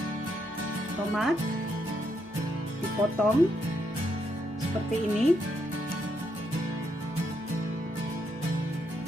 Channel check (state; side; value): normal; both; correlation 0.78